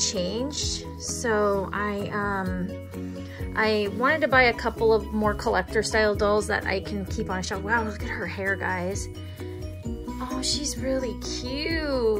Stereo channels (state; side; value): identical; both; correlation 1.00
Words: So I wanted to buy a couple of more collector style dolls that I can keep on a shelf. Wow, look at her hair, guys. Oh, she's really